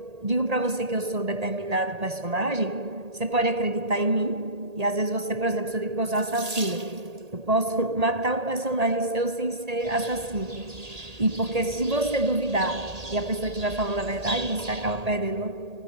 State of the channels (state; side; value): late; left; 1.8 ms